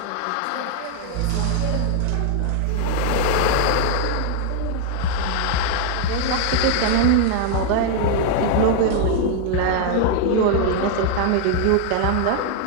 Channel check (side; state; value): both; different; correlation 0.00